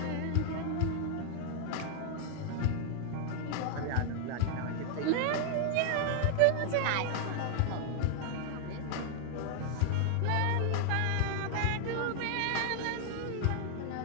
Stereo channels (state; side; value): different; both; correlation 0.00